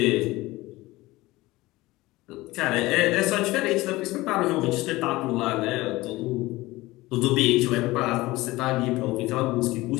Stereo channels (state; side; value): quieter; right; 19.5 dB